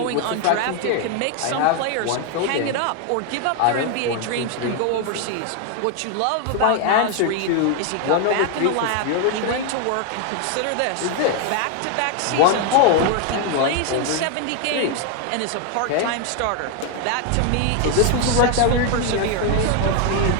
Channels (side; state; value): both; different; correlation 0.01